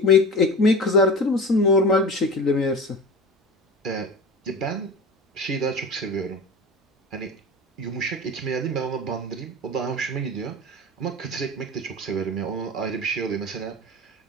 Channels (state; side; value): normal; both; correlation 0.31